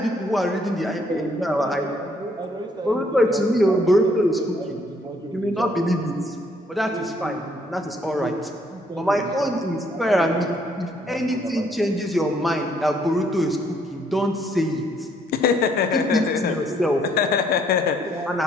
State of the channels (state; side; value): normal; both; correlation 0.67